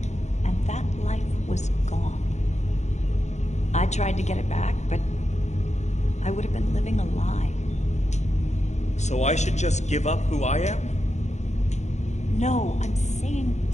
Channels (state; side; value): late; right; 0.33 ms